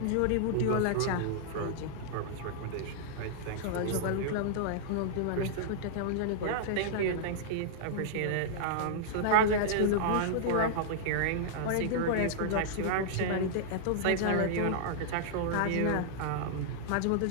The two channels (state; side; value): different; both; correlation -0.02